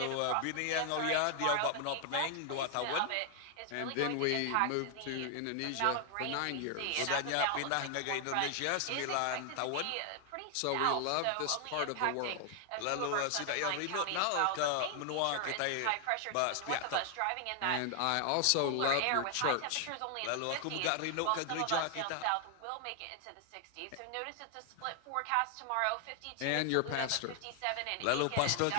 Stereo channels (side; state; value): both; different; correlation 0.00